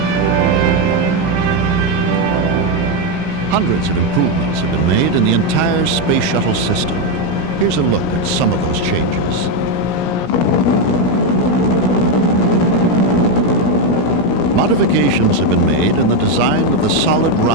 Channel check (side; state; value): right; noise; rumble, 22 dB below the sound